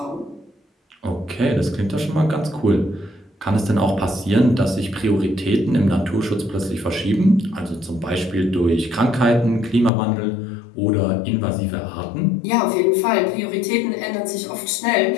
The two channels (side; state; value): right; drops out; at 9.9 s